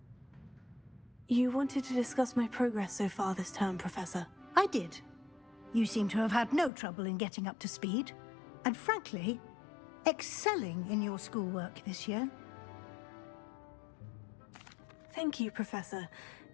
You wanted to discuss my progress so far this term, Professor. I did. You seem to have had no trouble in getting up to speed. And frankly, excelling in your schoolwork this year. Thank you, Professor.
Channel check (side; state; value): right; drops out; at 6.7 s